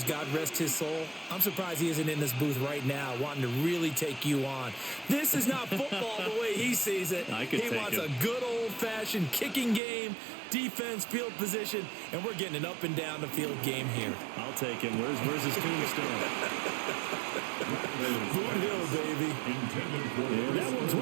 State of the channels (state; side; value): drops out; left; at 9.8 s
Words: God rest his soul, I'm surprised he isn't in this booth right now wanting to really take you on. This is not football the way he sees it. He wants a good old-fashioned kicking game, defense, field position, and we're getting an up and down the field game here. I'll take him. Where's his tombstone? Boot Hill, baby. And that one